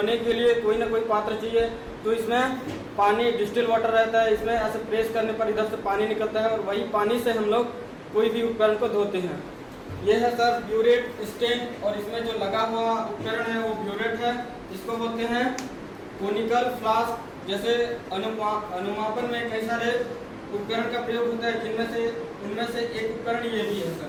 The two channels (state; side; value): identical; both; correlation 1.00